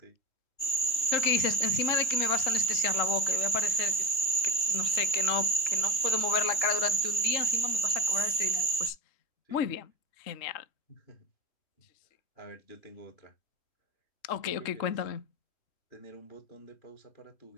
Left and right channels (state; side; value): late; right; 2.9 ms